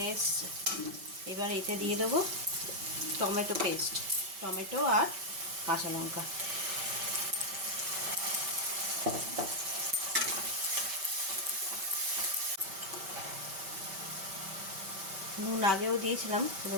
এসছে। এবার এতে দিয়ে দেবো টমেটো পেস্ট, টমেটো আর কাঁচা লঙ্কা। নুন আগেও দিয়েছিলাম,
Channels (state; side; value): late; left; 5.2 ms